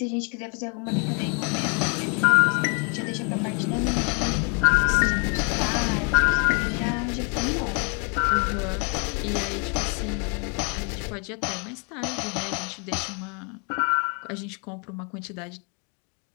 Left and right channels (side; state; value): right; quieter; 37.6 dB